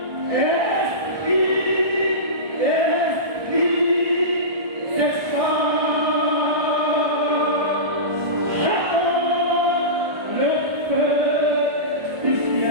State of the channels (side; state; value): left; late; 1.3 ms